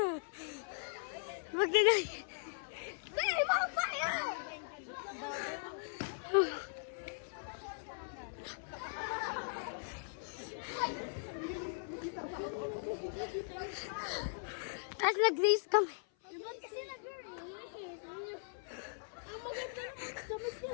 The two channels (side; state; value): right; silent; 52 dB below the other